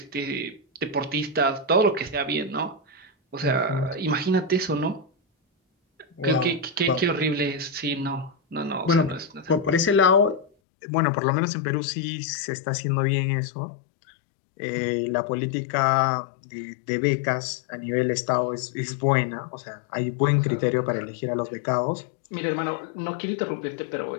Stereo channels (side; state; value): right; drops out; at 10.5 s